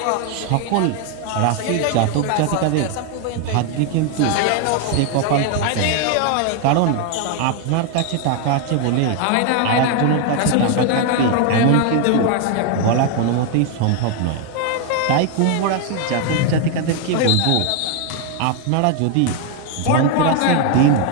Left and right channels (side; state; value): both; different; correlation 0.01